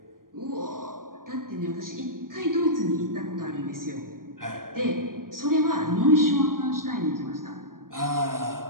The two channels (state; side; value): late; left; 0.91 ms